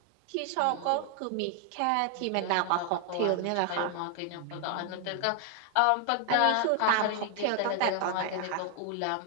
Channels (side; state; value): both; different; correlation 0.00